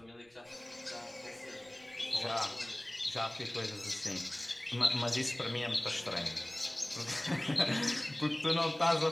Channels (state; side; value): noise; right; rumble, 30 dB below the sound